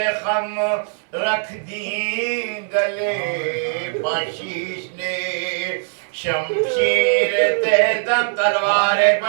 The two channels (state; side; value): silent; left; digital silence